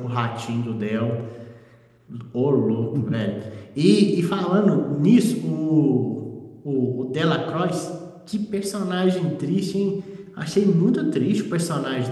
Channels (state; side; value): identical; both; correlation 1.00